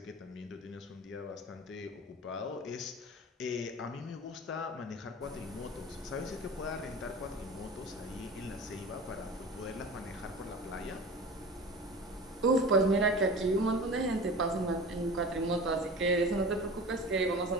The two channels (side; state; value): both; normal; correlation 0.36